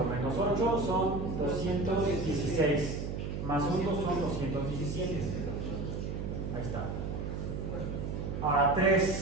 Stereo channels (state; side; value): noise; right; hum, 4 dB below the sound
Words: menos 8 son 216. Más 1 son 217. Ahí está. Ahora